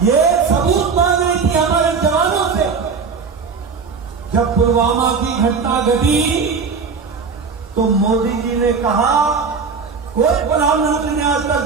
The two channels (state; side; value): quieter; left; 5.3 dB